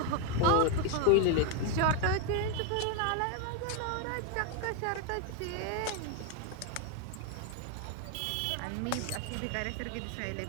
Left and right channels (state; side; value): different; both; correlation 0.01